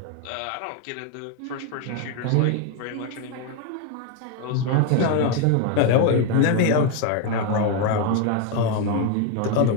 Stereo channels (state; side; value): different; both; correlation 0.01